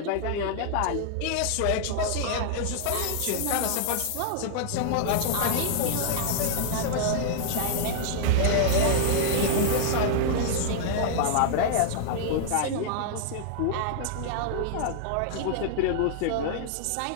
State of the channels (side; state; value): both; different; correlation -0.01